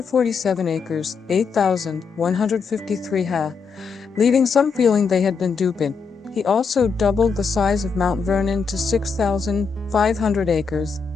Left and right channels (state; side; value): quieter; right; 5.4 dB